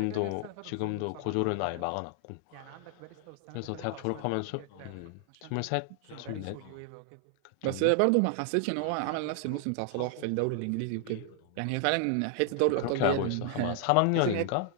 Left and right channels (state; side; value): different; both; correlation 0.00